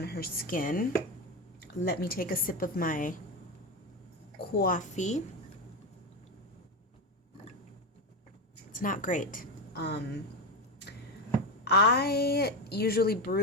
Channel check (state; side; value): normal; both; correlation 0.14